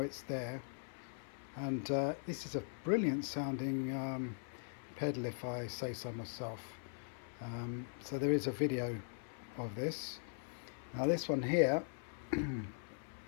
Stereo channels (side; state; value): right; silent; 51 dB below the other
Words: there. And this is a brilliant sounding pedal, if I say so myself. So there is a video of this. Now this one here,